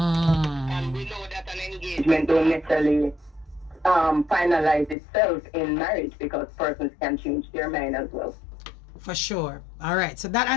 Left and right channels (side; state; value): right; drops out; at 5.0 s